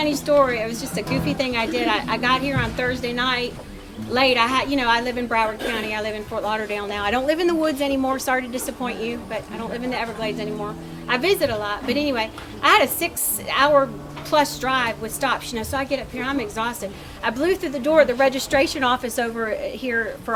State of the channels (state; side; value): identical; both; correlation 1.00